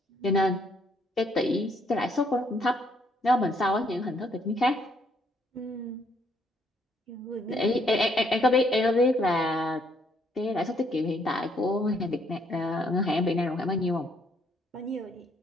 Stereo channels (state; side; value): normal; both; correlation 0.68